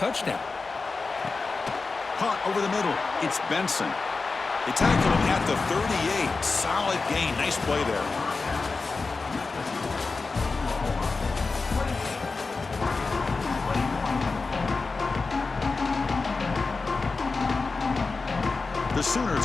Caught over the middle. It's Benson. They tackle him at the 38. Solid gain. Nice play there. The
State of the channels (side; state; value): right; quieter; 4.1 dB